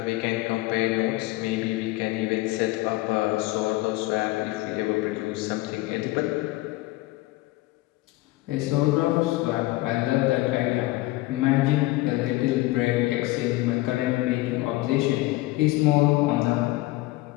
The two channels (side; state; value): right; quieter; 19.2 dB